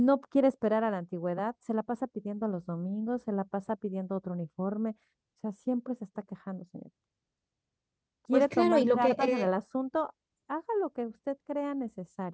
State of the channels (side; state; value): both; identical; correlation 1.00